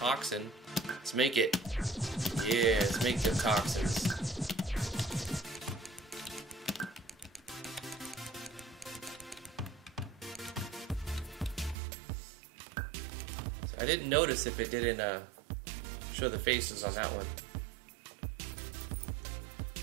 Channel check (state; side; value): drops out; left; at 11.8 s